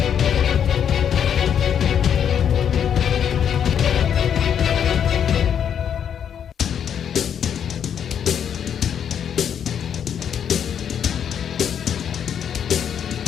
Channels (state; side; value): quieter; right; 8.5 dB